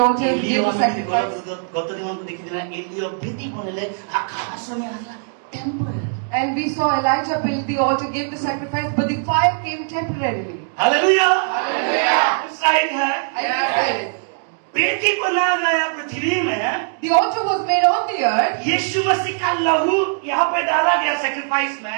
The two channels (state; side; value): silent; left; digital silence